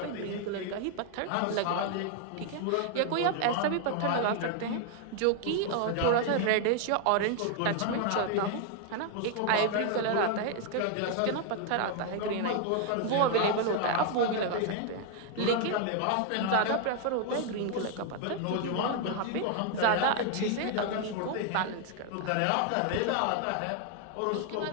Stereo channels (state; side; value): different; both; correlation 0.00